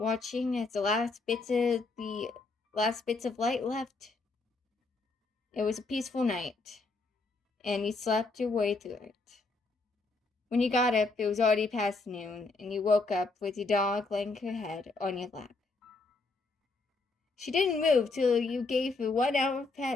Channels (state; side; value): quieter; right; 3.6 dB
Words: as the last bits of light left. It was a peaceful night, and you slept your way through it. When you got up, it was already past noon, and you woke up with your dog laying her head on your lap. She didn't move till you gave her 1 hour of